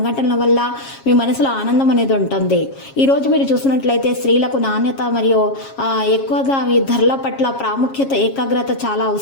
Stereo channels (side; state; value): right; late; 7.3 ms